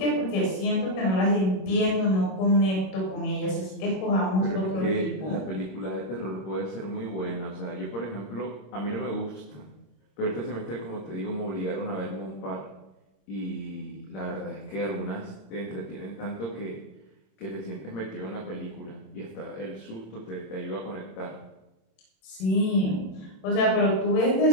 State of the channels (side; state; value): right; late; 27 ms